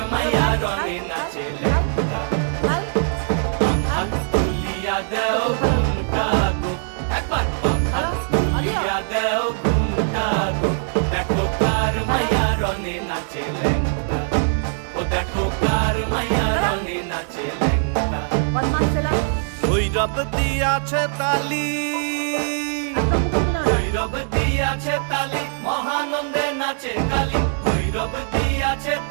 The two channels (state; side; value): silent; left; digital silence